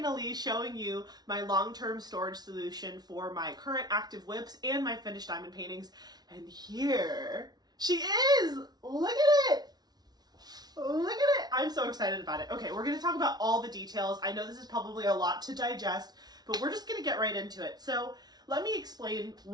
showing you my long-term storage solution for my current active WIPs and my finished diamond paintings. And here she is! Look at it! Look at it! I'm so excited about it. Okay, we're going to talk about all the details. I know this is probably a lot to digest, but we're just going to get right into it. So let me explain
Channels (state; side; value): late; left; 0.19 ms